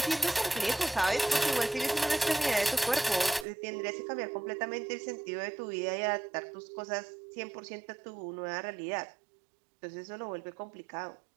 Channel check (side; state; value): left; drops out; at 3.5 s